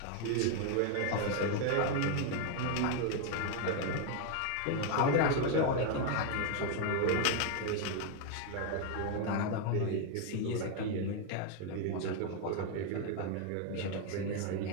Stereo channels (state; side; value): different; both; correlation 0.01